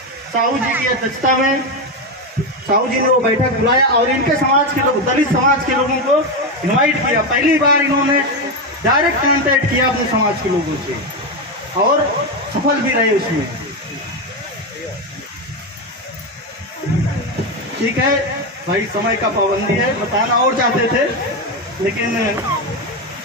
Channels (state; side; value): normal; both; correlation 0.11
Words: साहू जी की अध्यक्षता में साहू जी ने वो बैठक बुलाया और इनके समाज के लोग, दलित समाज के लोगों को इनवाइट किया। पहली बार इन्होंने डायरेक्ट कांटेक्ट किया अपने समाज के लोगों से, और सफल भी रहे उसमें। ठीक है भाई, समय का पाबंदी है, बताना और चाहते थे लेकिन